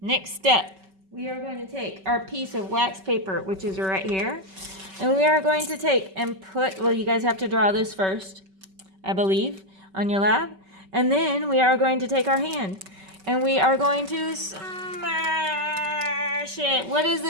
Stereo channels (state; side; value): late; left; 5.2 ms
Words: step. We are going to take our piece of wax paper, which is right here, and we are going to take and put, well, you guys have to draw this first, I believe, on your lab. And then we are going to take our hand and we are going to smash it. What is